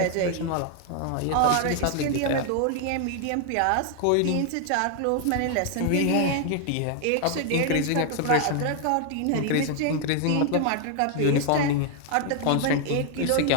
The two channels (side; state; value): both; different; correlation 0.00